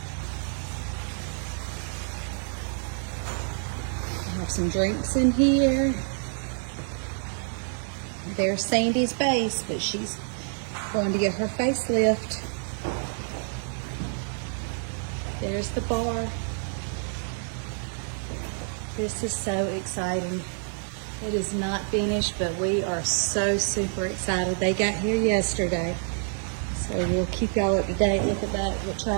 I have some drinks in here. There's Sandy's base, but she's going to get her facelift. There's the bar. This is so exciting. It is not finished, but we are so super excited. They got here yesterday, so we'll keep y'all up to date. Look at that, what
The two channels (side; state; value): left; silent; 60 dB below the other